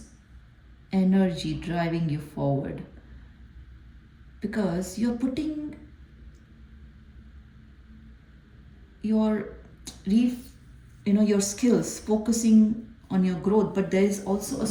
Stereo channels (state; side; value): identical; both; correlation 1.00